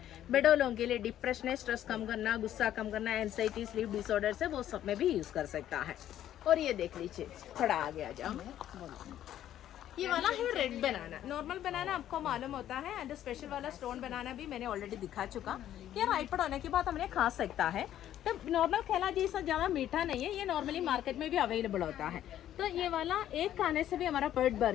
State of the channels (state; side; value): quieter; right; 11.7 dB